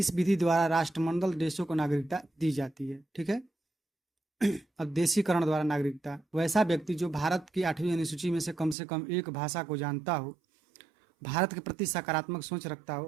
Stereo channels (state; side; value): drops out; left; at 8.8 s